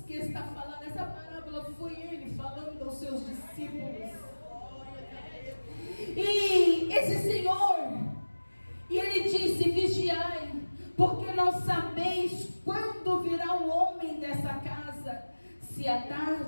que está falando. Essa parábola foi Ele falando aos seus discípulos. E esse Senhor, e Ele disse, vigiai, porque não sabeis quando virá o homem dessa casa, se à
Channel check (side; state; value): both; inverted; correlation -1.00